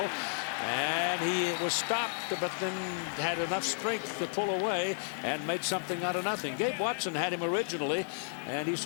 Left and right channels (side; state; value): right; silent; 56 dB below the other